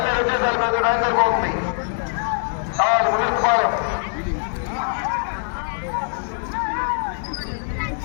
వచ్చేసారు. మీద టైం సరిపోతుంది. కావాలి ముదిరిపాలెం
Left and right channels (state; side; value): silent; right; 64 dB below the other